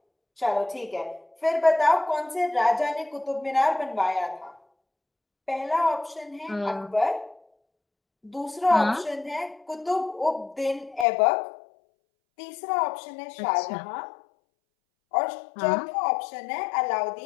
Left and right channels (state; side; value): drops out; right; at 11.1 s